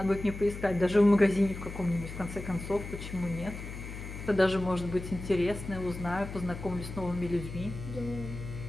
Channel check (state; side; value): noise; left; hum, 9 dB below the sound